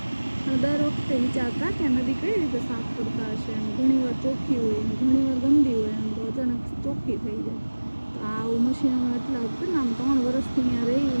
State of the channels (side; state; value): both; inverted; correlation -1.00